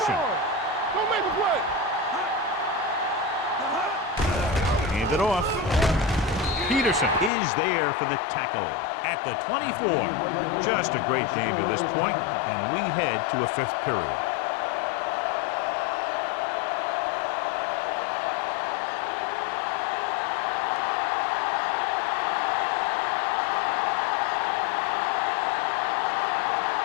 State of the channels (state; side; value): drops out; right; at 7.3 s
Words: Don't make the play. Hand it off. Peterson is there for the tackle at the 24. Just a great game to this point, and we head to a fifth period.